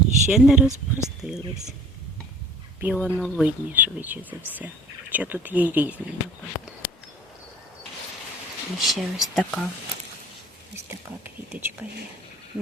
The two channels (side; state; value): both; normal; correlation 0.48